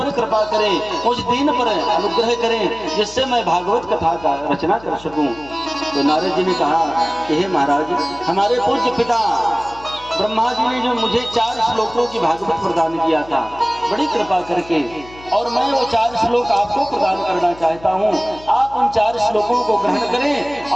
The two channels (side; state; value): left; noise; hum, 21 dB below the sound